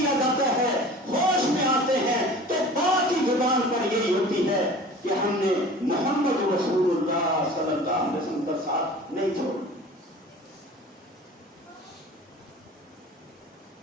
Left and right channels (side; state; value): both; normal; correlation 0.42